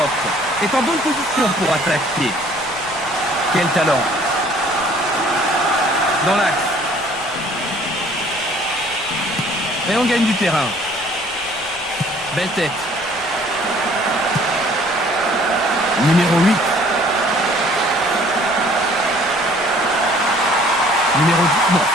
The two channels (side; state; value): left; noise; rumble, 23 dB below the sound